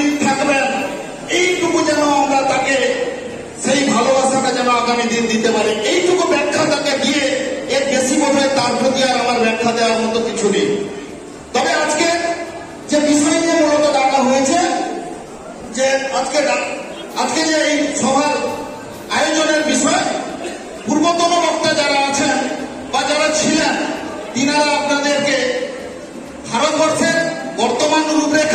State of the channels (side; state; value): both; identical; correlation 1.00